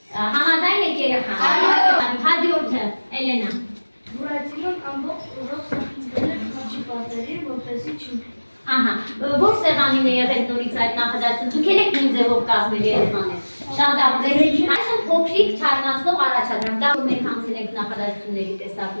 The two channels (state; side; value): inverted; both; correlation -1.00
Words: Համաձայն եք երեխան։ Հաջորդը, Էլենա։ Բուրատինոն ամբողջ ուժով սախիցվել էր խաչի պատերին, որպեսզի չընկնի։ Ահա, որ սեղանին է եղել նորից այդ նախադասությունը, դուք եք նույն ձևով կազմել երեխաներ։ Շատ ապրել։ Այսօր փոքրիկ թարնացնող առաջադրանք, դա որ մենք անցել ենք նախադասությունների